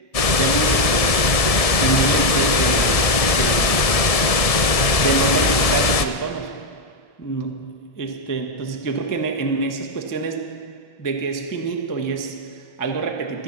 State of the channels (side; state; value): right; late; 1.7 ms